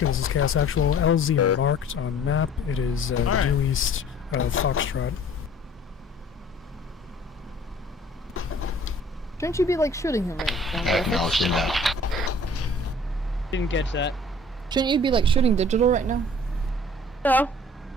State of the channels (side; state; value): both; normal; correlation 0.51